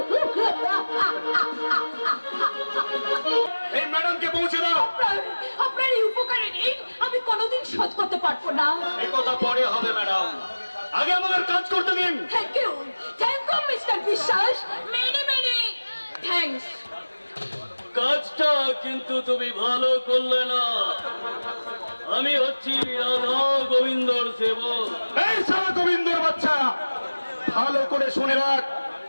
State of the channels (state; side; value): inverted; both; correlation -1.00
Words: এই ম্যাডামকে পৌঁছে দাও। আপনার এই উপকারে নেই আমি কোনোদিন শোধ করতে পারবো না। এই কথা পরে হবে ম্যাডাম, আগে আমাদের কাজ করতে দিন। থ্যাংক ইউ মিস্টার বিশ্বাস, মেনি থ্যাঙ্কস। কাজটা কিন্তু তুমি ভালো করলে না। আমি হচ্ছি রাধা গোবিন্দর সেবক। এই সারা গোবিন্দর বাচ্চা, ভালো করে শুনে রাখ,